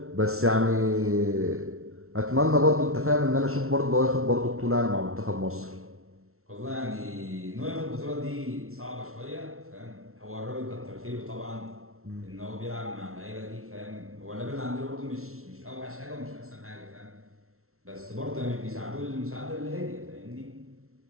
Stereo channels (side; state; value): left; late; 0.63 ms